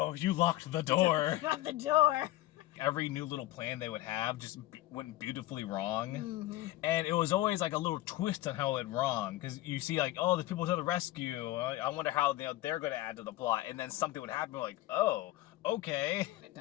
you locked the door. Not the door. Every new little plan they would have just went beautifully wrong. And it was always like a little twist on how it went wrong. Because you see like, oh, there's people to the rescue. I wonder how they're going to add to the plot. And then something would happen like, oh, okay.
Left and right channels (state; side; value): quieter; right; 16.7 dB